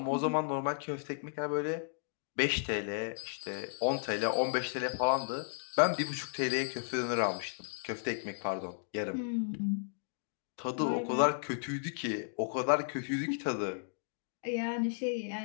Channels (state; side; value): silent; right; digital silence